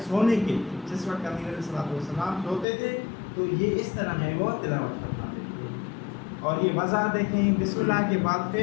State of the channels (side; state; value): right; drops out; at 2.7 s